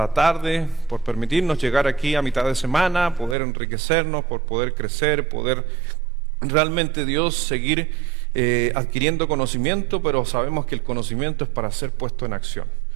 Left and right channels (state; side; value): drops out; left; at 3.4 s